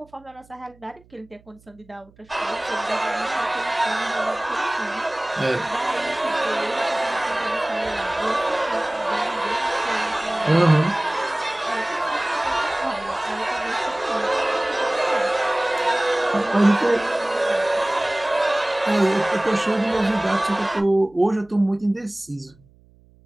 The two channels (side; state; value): right; noise; hum, 29 dB below the sound